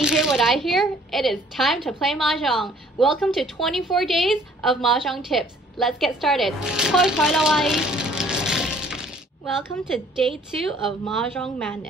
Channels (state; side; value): normal; both; correlation 0.58